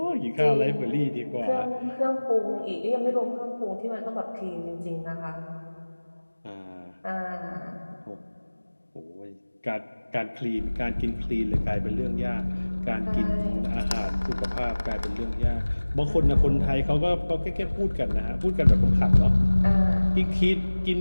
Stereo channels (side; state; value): both; inverted; correlation -1.00